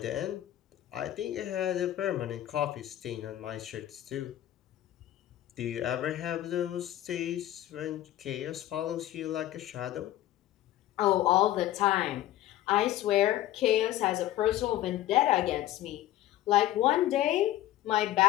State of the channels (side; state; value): right; quieter; 13.7 dB